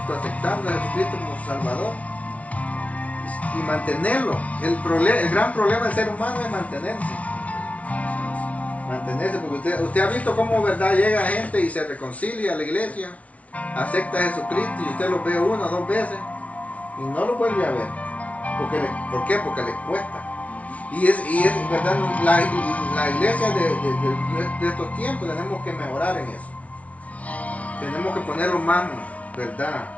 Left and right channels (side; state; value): right; late; 0.066 ms